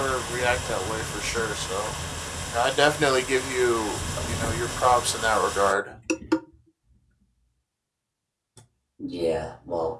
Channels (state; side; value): identical; both; correlation 1.00